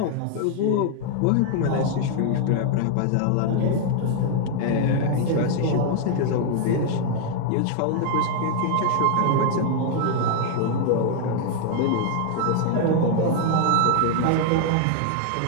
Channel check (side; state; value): both; different; correlation 0.00